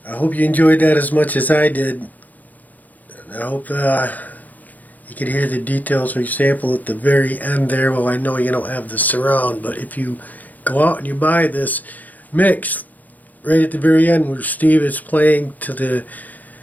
I hope you enjoyed that as much as I did. I hope you could hear the details, for example, at the very end there. Well, I know you don't have the surround, but if you go out and you buy this mix, right at the very end where Steve is playing to the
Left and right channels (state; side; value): late; right; 0.081 ms